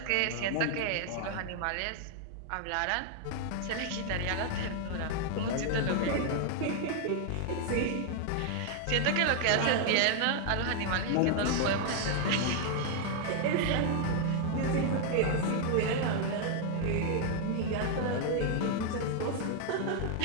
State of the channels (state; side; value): different; both; correlation 0.00